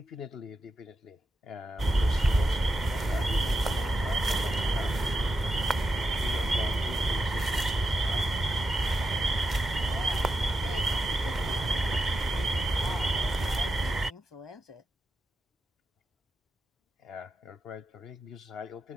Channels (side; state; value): both; normal; correlation 0.87